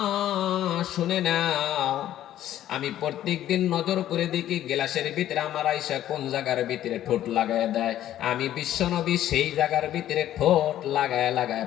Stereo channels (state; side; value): quieter; right; 12.4 dB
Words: শুনে নাও, আমি প্রত্যেকদিন নজর করে দেখি গ্লাসের ভিতরে আমার আয়েশা কোন জায়গার ভিতরে ঠোঁট লাগায় দেয়, আমি বিশ্ব নবী সেই জায়গার ভিতরে ঠোঁট লাগায় লাগায়